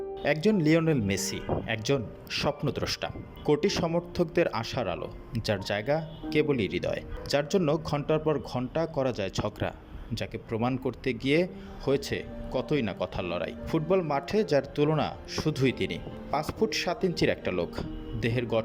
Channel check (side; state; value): both; identical; correlation 1.00